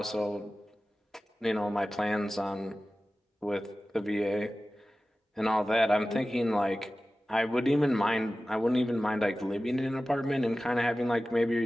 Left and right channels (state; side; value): normal; both; correlation 0.96